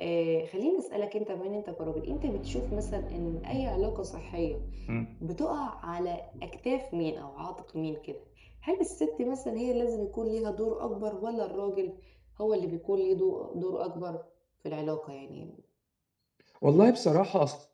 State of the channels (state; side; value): identical; both; correlation 1.00